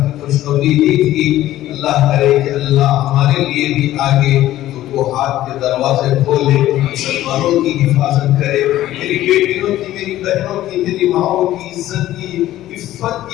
खुशखबरी दी थी। अल्लाह करे कि अल्लाह हमारे लिए भी आगे तो हाथ के दरवाजे खोले, मुसलमानों की हिफाजत करे, मेरी बेटियों की, मेरी बहनों की, मेरी माओं की इज्जत की, इफ्फत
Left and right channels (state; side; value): quieter; right; 14.2 dB